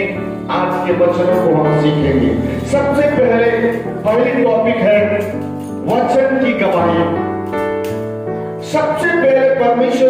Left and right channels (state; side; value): identical; both; correlation 1.00